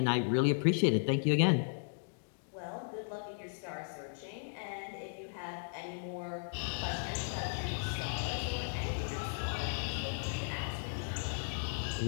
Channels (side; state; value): right; silent; digital silence